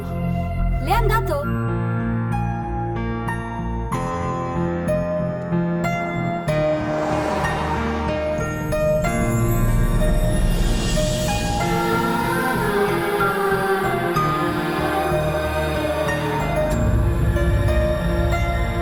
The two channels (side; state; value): both; identical; correlation 1.00